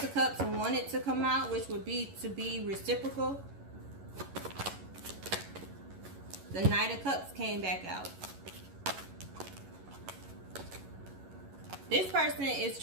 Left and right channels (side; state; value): left; late; 11 ms